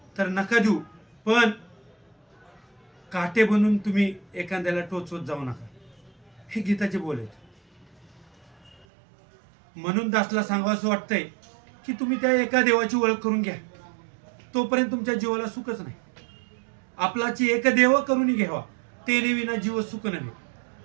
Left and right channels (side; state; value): left; drops out; at 8.8 s